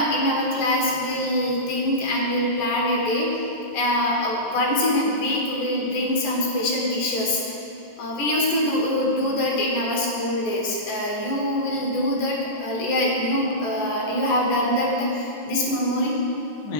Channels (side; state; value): right; late; 14 ms